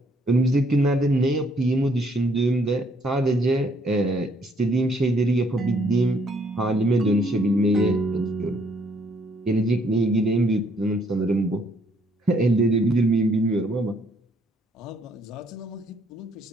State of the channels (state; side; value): normal; both; correlation 0.67